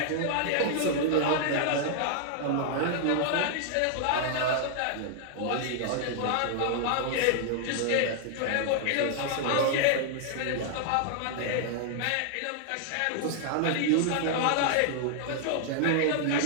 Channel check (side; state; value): both; different; correlation 0.00